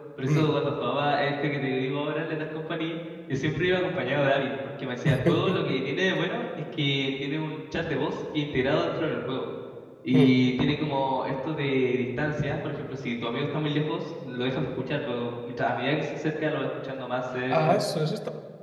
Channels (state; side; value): identical; both; correlation 1.00